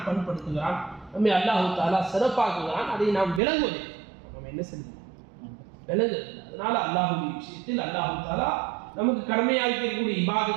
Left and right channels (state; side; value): drops out; left; at 3.4 s